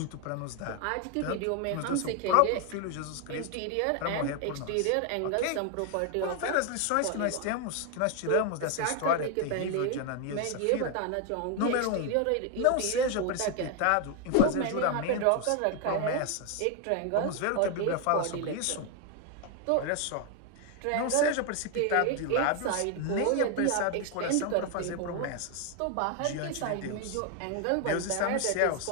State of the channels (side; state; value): both; different; correlation 0.01